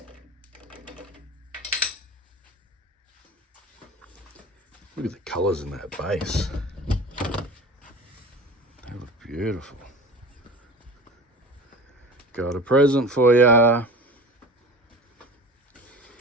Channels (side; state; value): both; normal; correlation 0.36